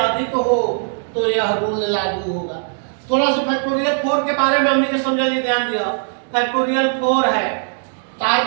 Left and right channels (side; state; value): left; silent; digital silence